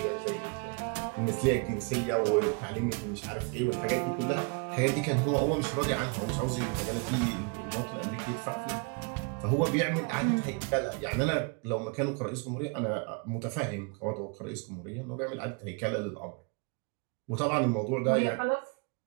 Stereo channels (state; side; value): quieter; left; 33.9 dB